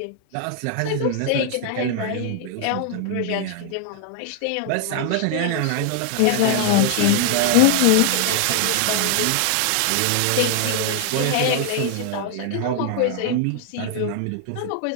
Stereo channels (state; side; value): different; both; correlation 0.00